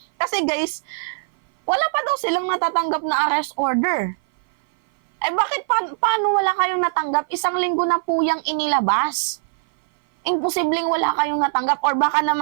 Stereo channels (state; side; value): silent; left; 57 dB below the other